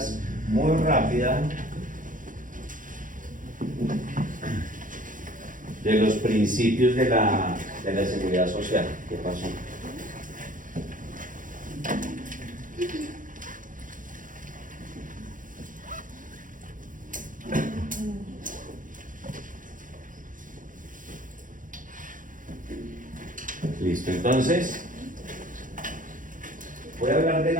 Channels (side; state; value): left; late; 0.38 ms